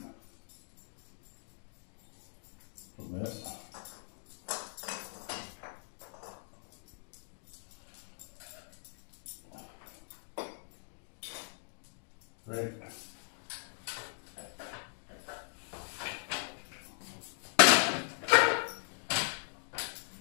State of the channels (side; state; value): right; silent; digital silence